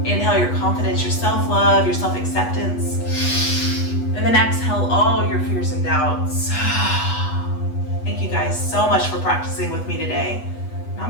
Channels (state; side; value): late; right; 8.2 ms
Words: Inhale your confidence, your self-love, your self-acceptance. And then exhale all your fears and doubts. Thank you guys so much for practicing with me today.